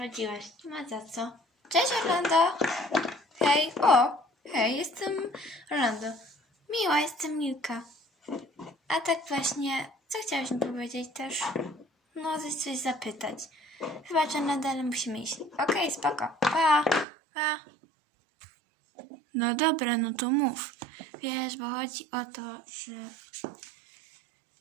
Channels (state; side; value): drops out; left; at 17.1 s